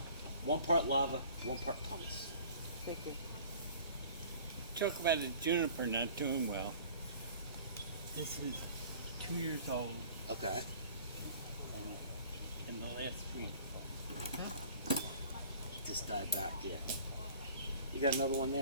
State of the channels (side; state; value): both; inverted; correlation -0.48